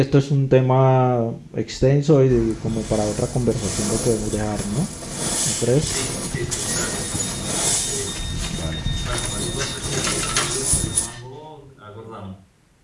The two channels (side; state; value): both; identical; correlation 1.00